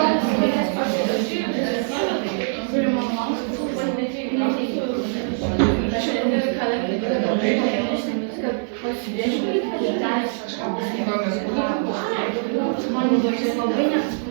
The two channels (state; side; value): silent; left; digital silence